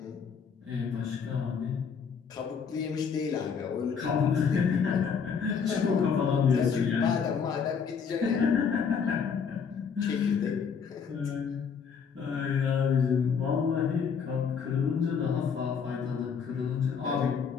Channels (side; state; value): right; quieter; 6.4 dB